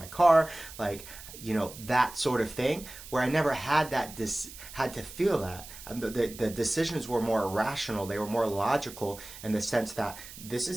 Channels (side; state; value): right; noise; hiss, 15 dB below the sound